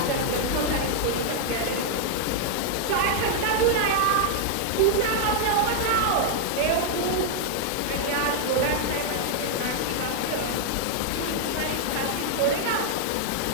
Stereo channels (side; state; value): both; different; correlation 0.00